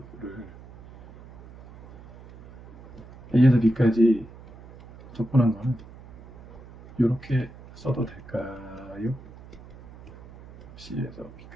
A에서 B까지 적분한 거는 이렇게 써도 될까요? C에서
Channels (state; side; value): noise; right; hum, 19 dB below the sound